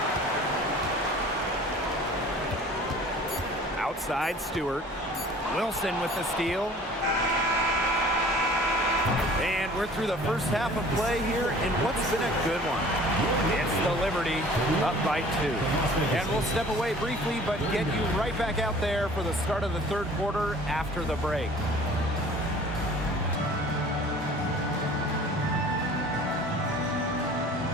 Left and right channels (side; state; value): both; normal; correlation 0.48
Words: Outside Stewart. Wilson with the steal. And we're through the first half of play here in what's been a good one. It's the Liberty up by 2. And we'll step away briefly, but get you right back out there for the start of the third quarter after the break.